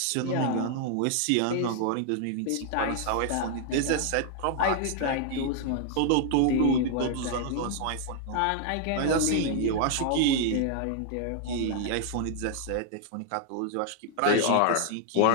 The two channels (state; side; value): different; both; correlation 0.00